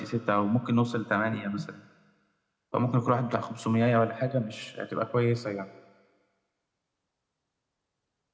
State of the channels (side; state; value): both; identical; correlation 1.00